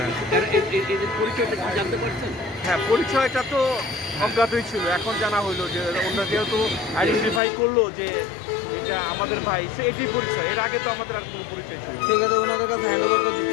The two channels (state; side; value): drops out; right; at 7.4 s